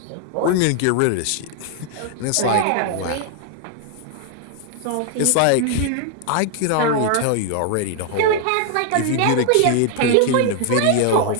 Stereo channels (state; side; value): different; both; correlation 0.00